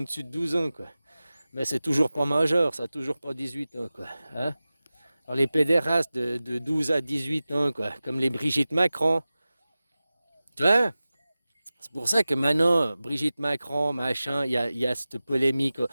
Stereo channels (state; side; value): inverted; both; correlation -0.96